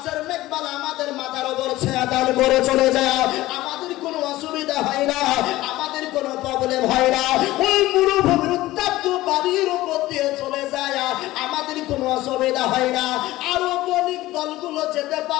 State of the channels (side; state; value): right; quieter; 17.1 dB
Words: মেঘমালা আমাদের মাথার উপর ছায়া দান করে চলে যায়। আমাদের কোনো অসুবিধা হয় না, আমাদের কোনো প্রবলেম হয় না। ওই মরুভূমির উত্তপ্ত বাড়ির উপর দিয়ে চলে যায়, আমাদের কোনো অসুবিধা হয় না। আরো বণিক দলগুলো যেতে